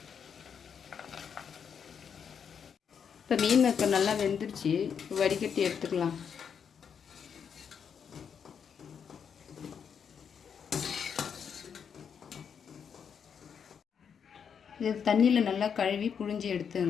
இப்போ மீன் மேக்கர் நல்லா வெந்துருச்சு. வடிகட்டி எடுத்துக்கலாம். இது தண்ணியில் நல்லா கழுவி புழிஞ்சி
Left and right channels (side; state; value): right; quieter; 7.2 dB